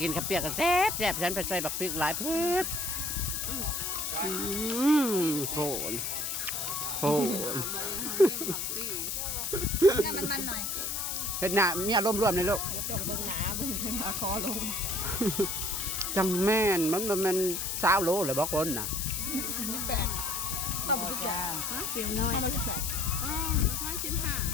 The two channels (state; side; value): noise; left; hiss, 2 dB below the sound